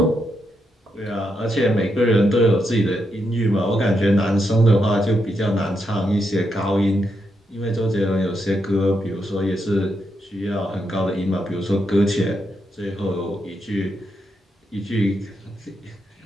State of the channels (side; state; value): both; normal; correlation 0.82